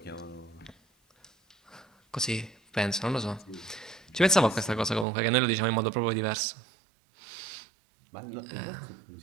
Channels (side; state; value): left; drops out; at 5.1 s